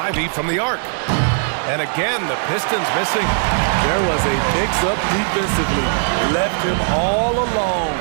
from the arc. And again, the Pistons missing. There was a mix-up defensively. Left him all alone.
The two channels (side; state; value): left; silent; digital silence